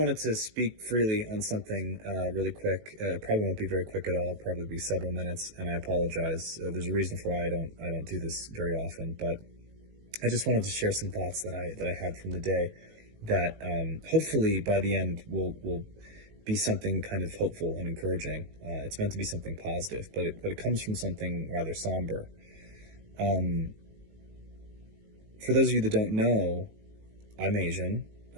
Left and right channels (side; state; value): left; late; 19 ms